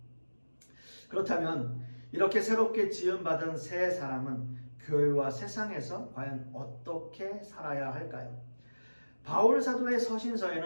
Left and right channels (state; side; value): inverted; both; correlation -1.00